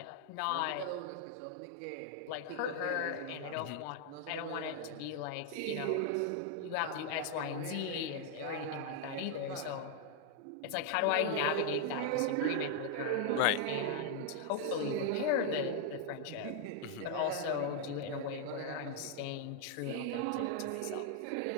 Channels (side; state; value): both; different; correlation 0.00